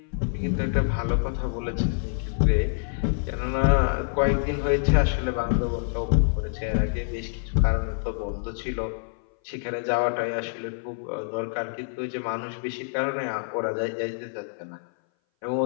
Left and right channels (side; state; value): right; silent; 58 dB below the other